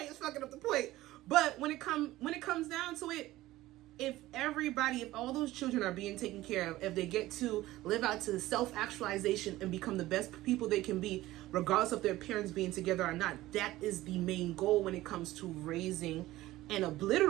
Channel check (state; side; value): quieter; left; 16.7 dB